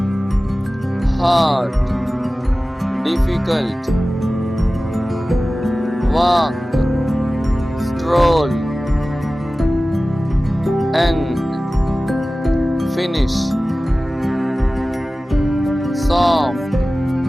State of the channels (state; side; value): normal; both; correlation 0.96